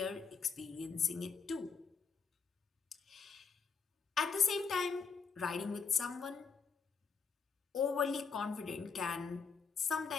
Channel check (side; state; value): right; quieter; 5.6 dB